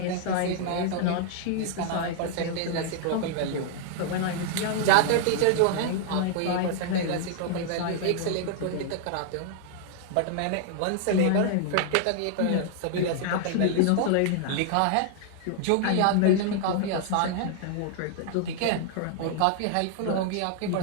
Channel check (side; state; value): both; different; correlation 0.00